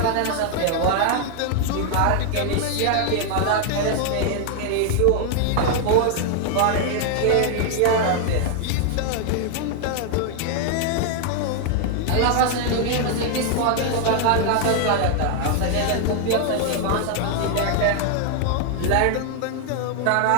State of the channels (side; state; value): both; different; correlation 0.00